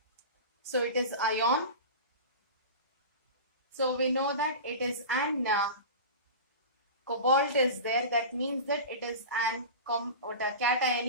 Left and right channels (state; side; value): inverted; both; correlation -0.31